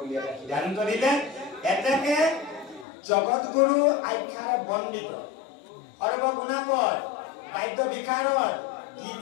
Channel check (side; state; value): right; drops out; at 2.9 s